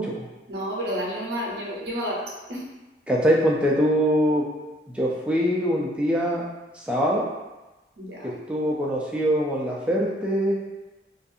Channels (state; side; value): normal; both; correlation 0.62